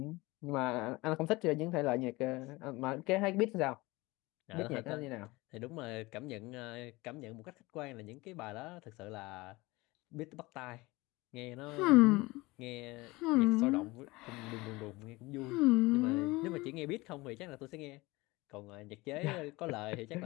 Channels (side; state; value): right; quieter; 22.0 dB